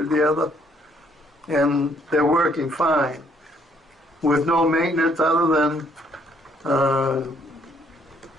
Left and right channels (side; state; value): both; normal; correlation 0.66